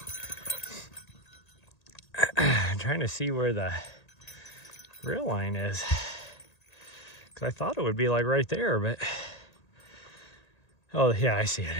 I'm trying to see where the rail line is, because I thought it would be like right there, but oh yeah, I see it.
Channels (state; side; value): late; right; 1.8 ms